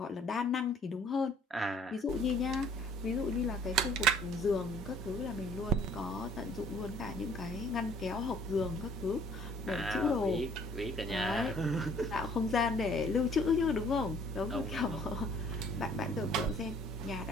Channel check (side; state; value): both; normal; correlation 0.57